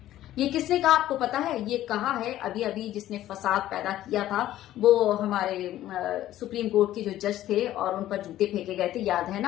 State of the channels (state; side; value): quieter; right; 13.6 dB